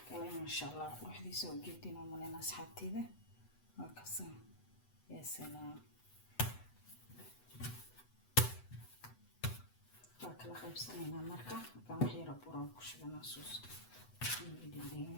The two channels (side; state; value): right; late; 8.0 ms